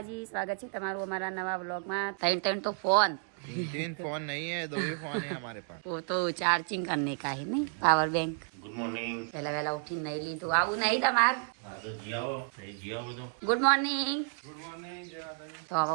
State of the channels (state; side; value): silent; left; 57 dB below the other